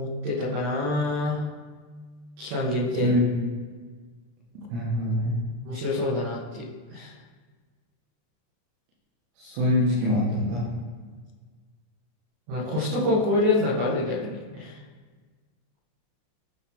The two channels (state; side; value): late; left; 34 ms